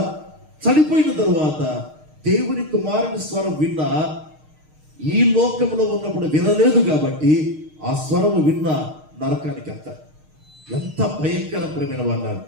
చనిపోయిన తరువాత దేవుని కుమారుని స్వరం విన్నా ఈ లోకంలో ఉన్నప్పుడు వినలేదు కాబట్టి ఆ స్వరము విన్నా నరకానికి వెళ్తారు. ఎంత భయంకరమైన వాళ్ళు.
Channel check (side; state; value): left; late; 6.5 ms